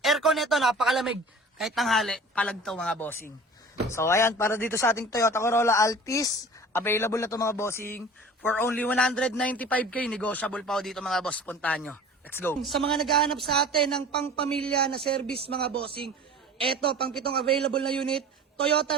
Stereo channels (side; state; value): both; normal; correlation 0.41